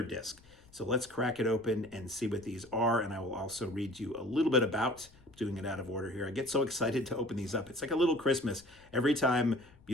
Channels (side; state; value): left; noise; rumble, 26 dB below the sound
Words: disc. So let's crack it open and see what these are, and I will also read you a little bit about, doing it out of order here. I get so excited to open these up. It's like a little Christmas. Every time,